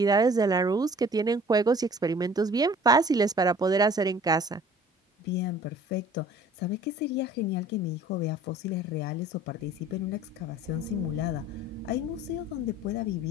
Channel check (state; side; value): normal; both; correlation 0.50